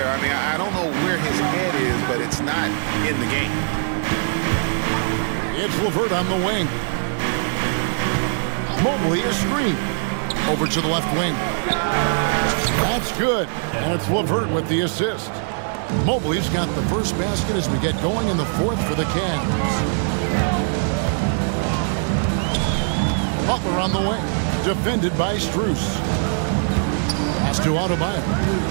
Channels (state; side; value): silent; left; 65 dB below the other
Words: I mean, I don't know where his head is, but it's not in the game. It's LeVert on the wing. Mobley is screened. Over to the left wing. That's good. And it's LeVert with the assist. Mobley's got the first basket as we get going in the 4th for the Cavs. Butler on the wing. Defended by Strus. Pass to Adebayo.